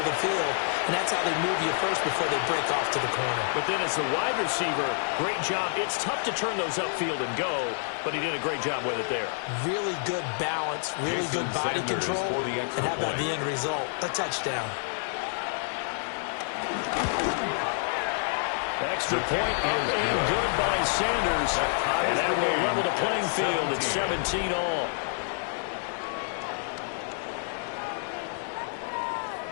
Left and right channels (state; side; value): silent; right; digital silence